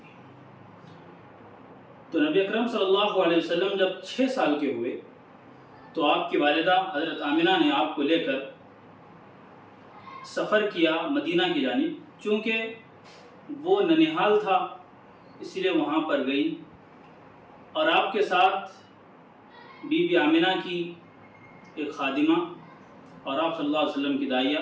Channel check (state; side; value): identical; both; correlation 1.00